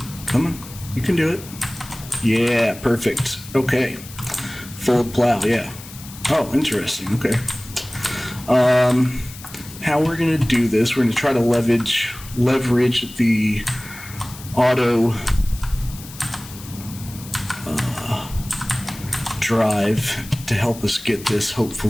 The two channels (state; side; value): noise; left; hiss, 16 dB below the sound